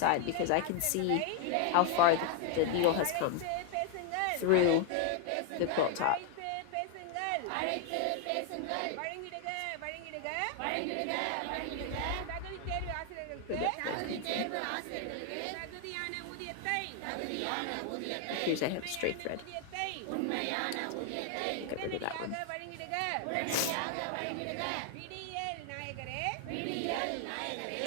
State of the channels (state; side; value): different; both; correlation 0.00